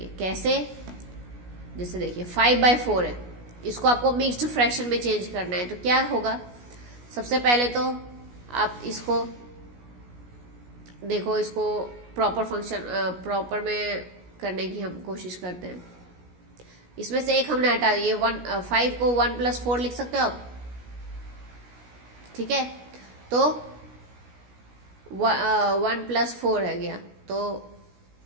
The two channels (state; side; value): late; left; 17 ms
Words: कैसे, जैसे देखिए 5/4 है, इसको आपको मिक्स्ड फ्रैक्शन में चेंज करना है तो क्या होगा, सबसे पहले तो आप इसको देखो, इसको प्रॉपर में करने की हम कोशिश करते हैं। इसमें से एक हमने हटा दिए, 5 को 1 + 4 लिख सकते हो आप, ठीक है। तो 1 + 4 है गया, तो